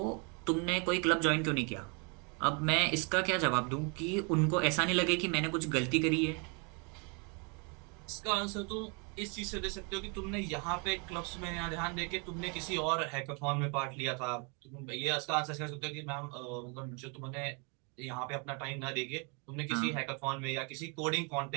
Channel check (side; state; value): left; quieter; 34.3 dB